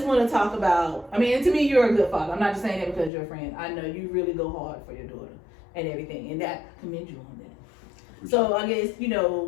want to talk about, I mean, and to me, you're a good father. I'm not just saying that because you're a friend. I know you really go hard for your daughter and everything, and that commend you on that. So I guess,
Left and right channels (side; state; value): right; drops out; at 3.1 s